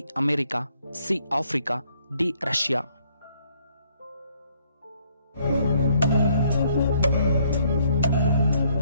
America, C Africa, D Russia.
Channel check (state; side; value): inverted; both; correlation -0.67